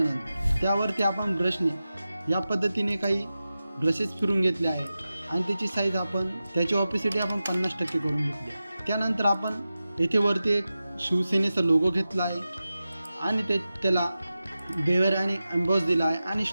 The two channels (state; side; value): inverted; both; correlation -0.94